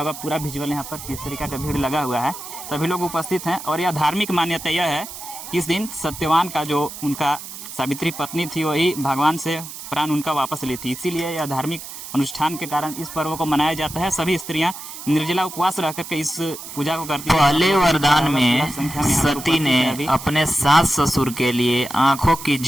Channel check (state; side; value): noise; right; hiss, 11 dB below the sound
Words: होगा, पूरा विजुअल यहाँ पर किस तरीका का भीड़ लगा हुआ है, सभी लोग उपस्थित हैं। और यह धार्मिक मान्यता यह है कि इस दिन सत्यवान का जो उनका सावित्री पत्नी थी, वही भगवान से प्राण उनका वापस ली थी। इसीलिए यह धार्मिक अनुष्ठान के कारण इस पर्व को मनाया जाता है। सभी स्त्रियां निर्जला उपवास रह करके इस पूजा को करती हैं। पहले वरदान में सती ने अपने सास ससुर के लिए आंखों की